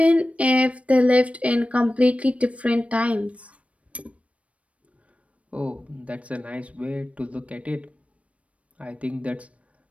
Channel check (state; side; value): late; left; 0.064 ms